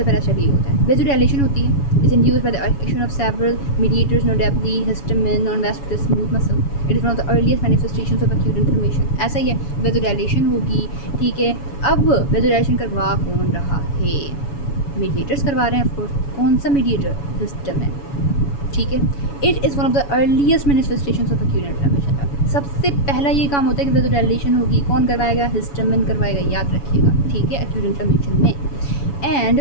पहला स्टेप यही होता है। वेसोडाइलेशन होती है, is induced by the action of several mediators, notably histamine on vascular smooth muscle. It is one of the earliest manifestations of acute inflammation. ऐसा ही है, वेसोडाइलेशन होगी, ठीक है। अब वेसोडाइलेशन करवा कौन रहा है? मीडिएटर्स करवा रहे हैं ऑफकोर्स। कौन सा मीडिएटर? हिस्टामिन, ठीक है। It is one of the earliest manifestations of acute inflammation. सबसे पहला ये काम होता है कि वेसोडाइलेशन होगी, कौन करवाएगा? हिस्टामिन करवाएगा, याद रखिएगा, ठीक है, एक्यूट इन्फ्लेमेशन में। And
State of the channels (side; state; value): right; late; 7.1 ms